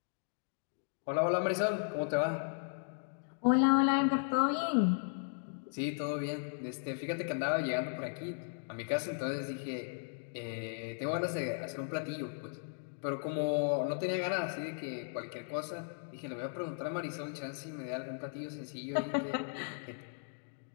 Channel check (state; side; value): silent; right; digital silence